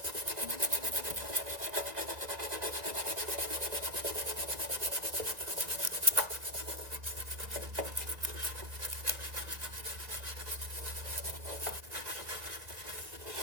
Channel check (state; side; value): late; left; 2.1 ms